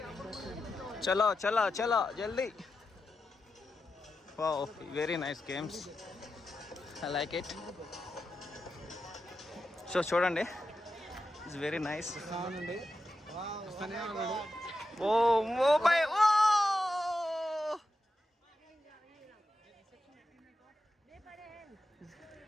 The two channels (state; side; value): normal; both; correlation 0.89